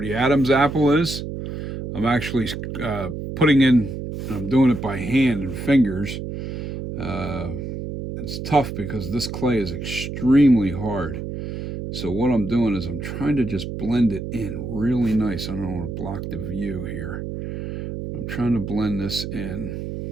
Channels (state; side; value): noise; right; hum, 6 dB below the sound